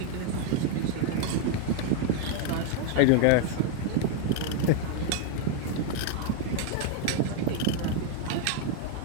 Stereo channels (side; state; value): both; different; correlation 0.01